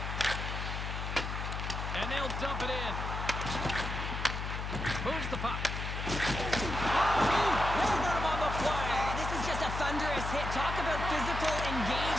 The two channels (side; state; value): left; noise; hum, 4 dB below the sound